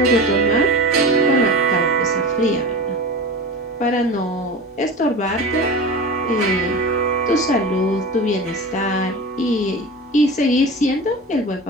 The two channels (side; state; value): both; normal; correlation 0.31